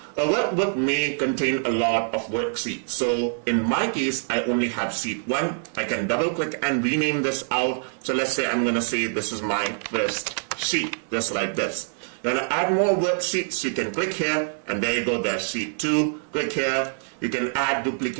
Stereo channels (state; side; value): silent; left; 62 dB below the other